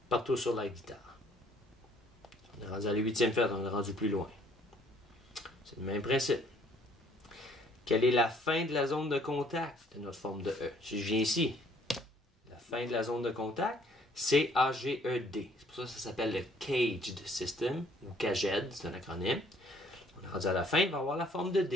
Partout sur la guitare. On est rendu à la 8e fête, on est rendu plus loin. C'est le même principe. Quelle est la fin de la zone de contact de notre forme de E? Si je viens ici, la fin de la zone de contact, c'est C-A-G-E-D. C'est pour ça que ça s'appelle le Caged System, ou CAGED, c'est un acronyme. On est rendu à la fin, il va avoir la forme de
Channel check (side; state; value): both; normal; correlation 0.61